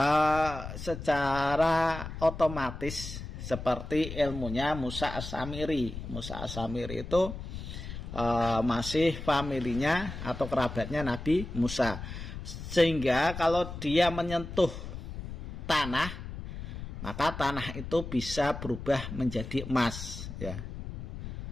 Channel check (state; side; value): noise; left; rumble, 9 dB below the sound